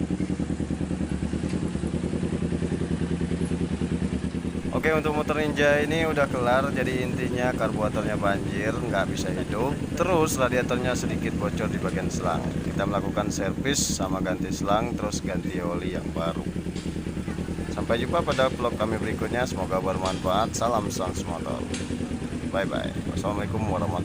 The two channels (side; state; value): both; identical; correlation 1.00